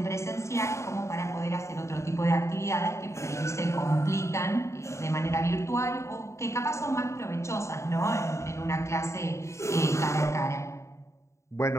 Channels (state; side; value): late; right; 0.14 ms